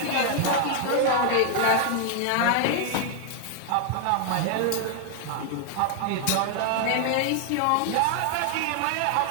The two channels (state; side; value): different; both; correlation 0.00